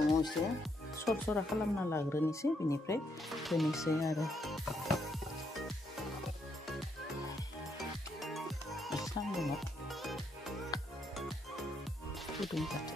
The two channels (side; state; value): both; normal; correlation 0.76